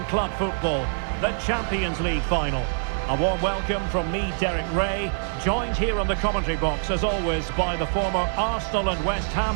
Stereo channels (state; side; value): silent; left; digital silence